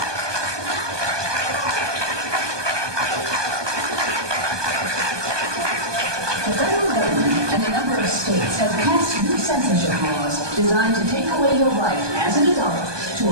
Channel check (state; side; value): late; left; 1.2 ms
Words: The federal government and a number of states have passed new censorship laws designed to take away your right as an adult